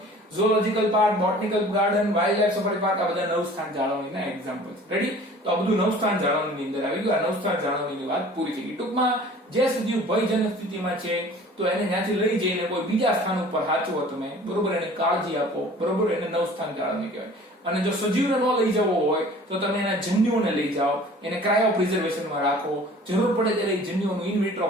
ઝૂઓલોજીકલ park, botanical garden, wild life safari park આ બધા નવસ્થાન જાળવણીના એક્ઝામ્પલ છે. રેડી? તો આ બધું નવસ્થાન જાળવણીની અંદર આવી ગયું. આ નવસ્થાન જાળવણીની વાત પૂરી થઈ ગઈ. ટૂંકમાં જે સજીવ ભયજનક સ્થિતિમાં છે તો એને ત્યાંથી લઈ જઈને કોઈ બીજા સ્થાન ઉપર સાચવો તમે. બરોબર? એને કાળજી આપો. બરોબર? એને નવસ્થાન જાળવણી કહેવાય. અને જો સજીવને ન લઈ જવો હોય તો તમે એના જન્યુઓને લઈ જાઓ, એને ક્રાયો પ્રિઝર્વેશનમાં રાખો, જરૂર પડે ત્યારે જન્યુઓનું ઇન વિટ્રો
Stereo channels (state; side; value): normal; both; correlation 0.47